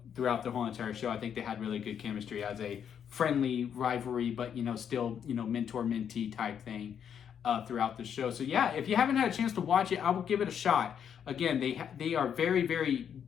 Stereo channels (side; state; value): right; quieter; 8.3 dB